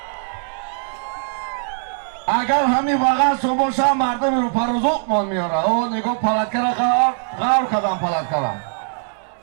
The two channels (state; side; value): silent; left; 64 dB below the other